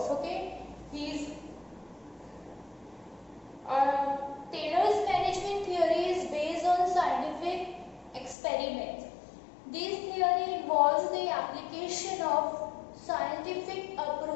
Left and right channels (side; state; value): right; drops out; at 8.3 s